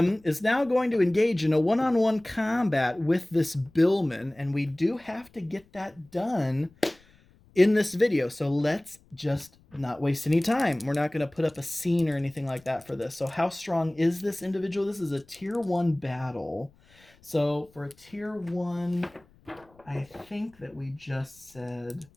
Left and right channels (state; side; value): noise; left; rumble, 30 dB below the sound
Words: is now going to engage in a one-on-one combat with this billman. And we do have to get that done in this video. So let's just not waste any time. We're not going to put up a scene or anything like that for this. So how strong is this individual? This is a tier 1 battle. So for a tier 1, I think that we just said